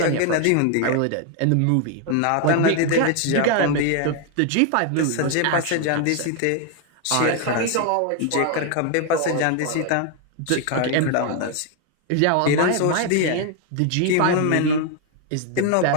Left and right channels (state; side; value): different; both; correlation 0.01